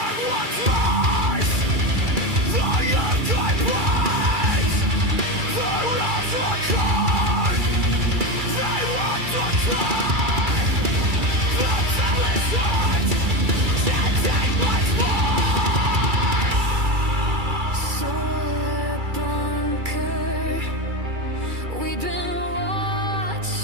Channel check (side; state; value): left; late; 2.3 ms